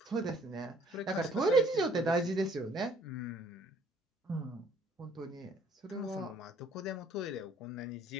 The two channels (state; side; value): normal; both; correlation 0.60